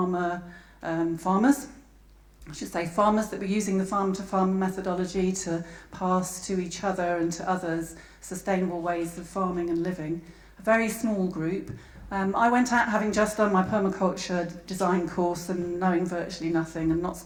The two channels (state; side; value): identical; both; correlation 1.00